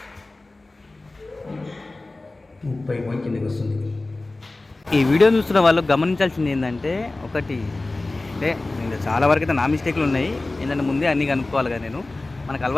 కిందకి వస్తుంది. ఈ వీడియో చూస్తున్న వాళ్ళు గమనించాల్సింది ఏంటంటే, ఒకటి అంటే చాలా వరకు అయితే నా మిస్టేక్లు ఉన్నాయి. ఏంటంటే ముందే అన్నీ కనుక్కోవాలి కదా. నేను మనకు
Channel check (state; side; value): quieter; right; 3.1 dB